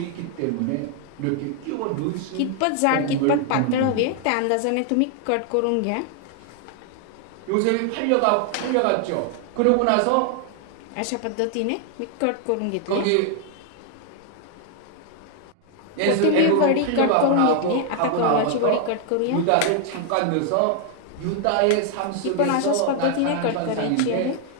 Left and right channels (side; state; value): both; different; correlation 0.00